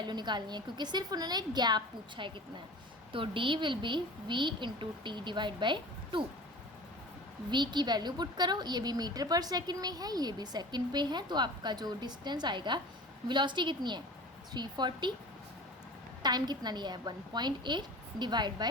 निकालनी है, क्योंकि सिर्फ उन्होंने गैप पूछा है कितना है। तो D will be v into T divide by 2। v की वैल्यू पुट करो, ये भी मीटर पर सेकंड में है, ये भी सेकंड पे है, तो आपका जो डिस्टेंस आएगा, वेलोसिटी कितनी है 340, टाइम कितना लिया है 1.8 डिवाइड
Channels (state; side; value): normal; both; correlation 0.38